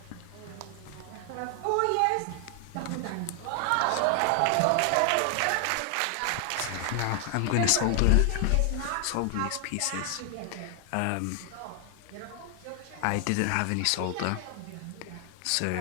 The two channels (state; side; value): different; both; correlation 0.00